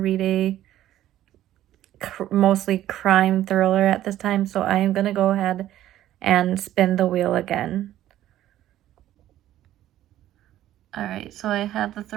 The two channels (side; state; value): left; quieter; 13.1 dB